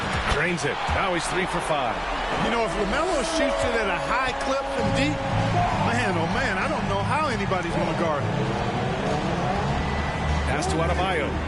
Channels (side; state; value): both; identical; correlation 1.00